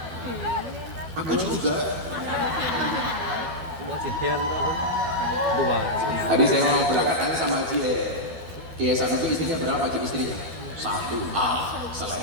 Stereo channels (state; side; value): late; left; 12 ms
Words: Aku juga. Mau cihir dua. Tadi saya mau berangkat tanya sama Haji Kiai Hasan itu istrinya berapa Haji istrinya? 1.